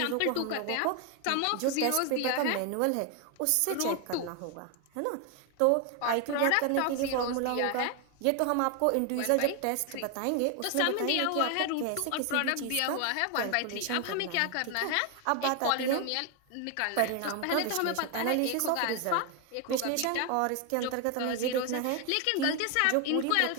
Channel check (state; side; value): different; both; correlation 0.01